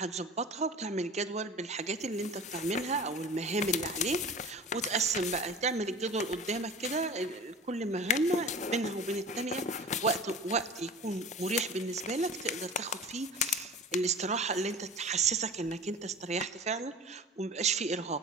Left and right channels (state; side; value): normal; both; correlation 0.37